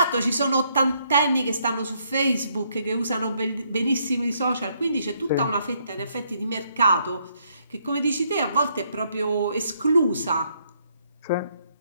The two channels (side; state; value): both; inverted; correlation -0.72